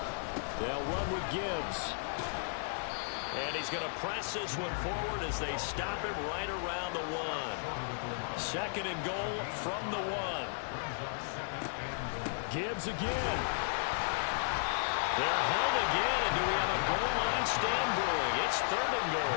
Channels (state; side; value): silent; right; 55 dB below the other